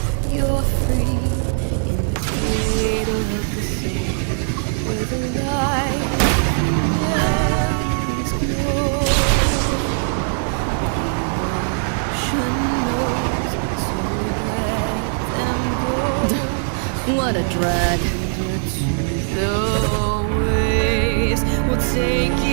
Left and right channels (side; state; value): left; silent; digital silence